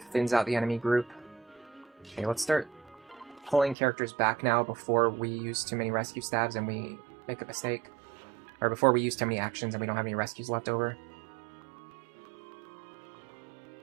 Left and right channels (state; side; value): drops out; left; at 3.8 s